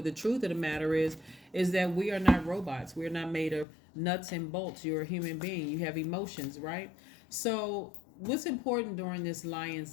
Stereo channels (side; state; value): right; drops out; at 3.7 s